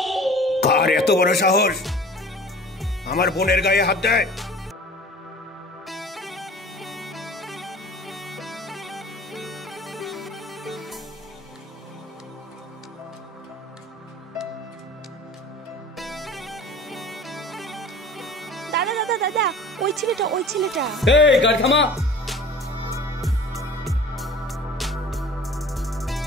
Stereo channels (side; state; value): both; normal; correlation 0.43